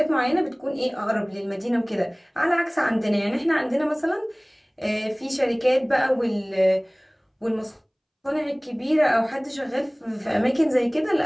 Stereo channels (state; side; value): identical; both; correlation 1.00